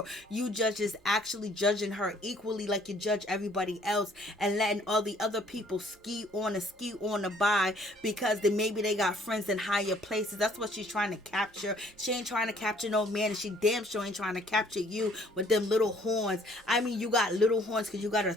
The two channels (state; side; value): normal; both; correlation 0.60